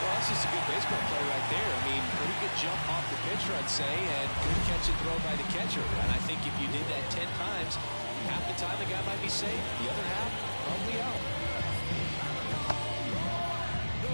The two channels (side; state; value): both; inverted; correlation -1.00